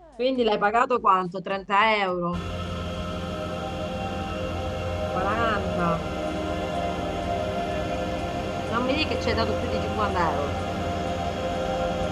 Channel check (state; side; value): identical; both; correlation 1.00